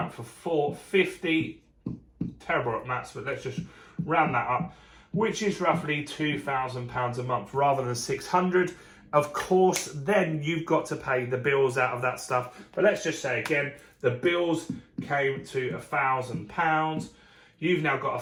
for $450. Terrible at maths, but let's just round that up, which is roughly £2,000 a month rather than 600. Of course, then you've got to pay the bills out of that stuff. But let's just say again, the bills came to £1,000. You've now got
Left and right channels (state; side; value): identical; both; correlation 1.00